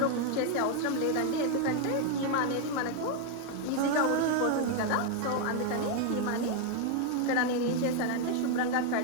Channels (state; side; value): different; both; correlation 0.01